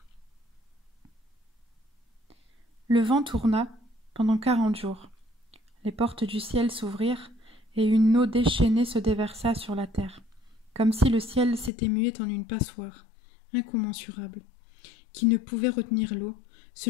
Le vent tourna pendant 40 jours. Les portes du ciel s'ouvrirent et une eau déchaînée se déversa sur la terre, comme si le ciel s'était mué en une passoire incommensurable, qui ne pouvait retenir l'eau,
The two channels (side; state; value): right; drops out; at 11.7 s